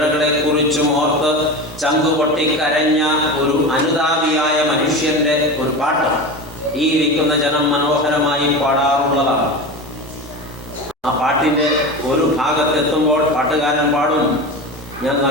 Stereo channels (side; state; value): both; normal; correlation 0.26